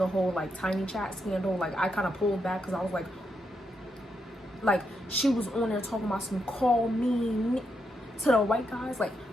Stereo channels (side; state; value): both; normal; correlation 0.82